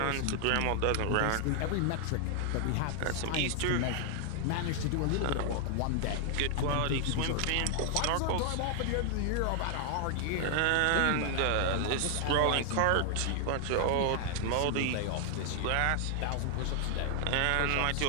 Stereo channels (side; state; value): both; different; correlation 0.00